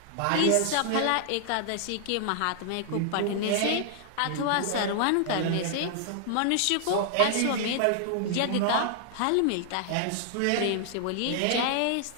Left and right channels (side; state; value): both; different; correlation -0.01